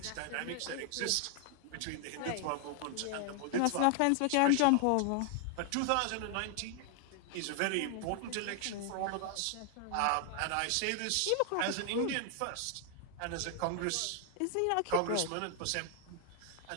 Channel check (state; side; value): different; both; correlation 0.00